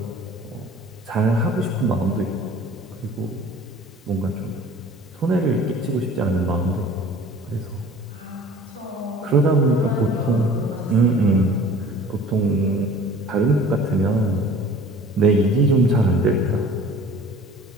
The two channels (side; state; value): both; normal; correlation 0.46